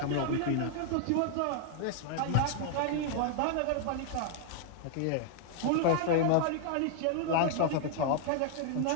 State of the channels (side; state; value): both; different; correlation 0.00